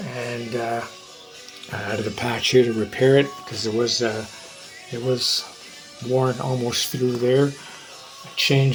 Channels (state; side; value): identical; both; correlation 1.00